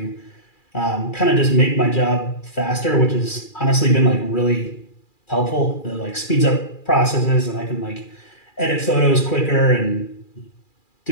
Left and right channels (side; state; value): right; late; 2.4 ms